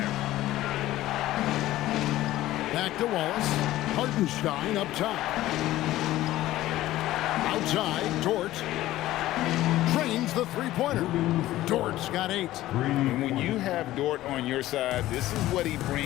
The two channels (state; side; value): quieter; right; 15.4 dB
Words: Back to Wallace. Hartenstein up top. Outside, Dort drains the three-pointer. Dort's got 8. And when you have Dort on your side, this is what he